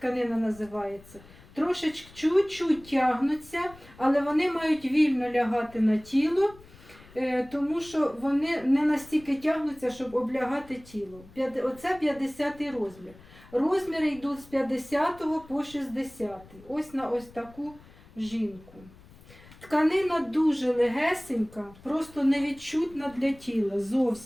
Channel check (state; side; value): noise; left; rumble, 22 dB below the sound